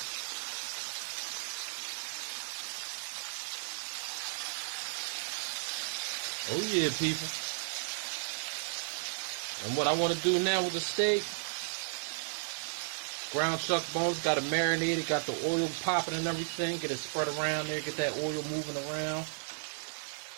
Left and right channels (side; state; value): left; silent; 55 dB below the other